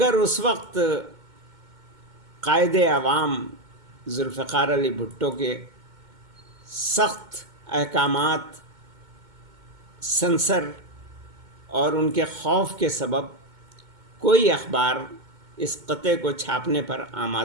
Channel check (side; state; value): left; late; 2.2 ms